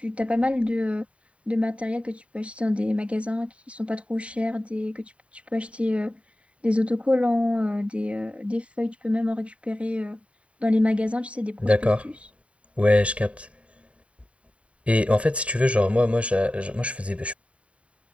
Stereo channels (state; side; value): late; left; 0.063 ms